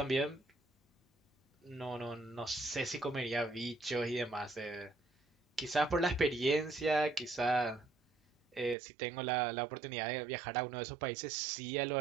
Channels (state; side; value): drops out; left; at 8.8 s